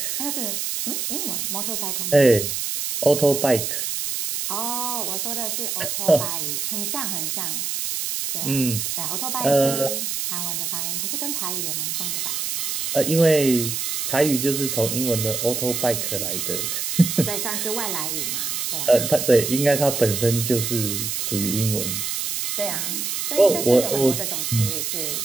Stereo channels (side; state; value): right; noise; hiss, 2 dB below the sound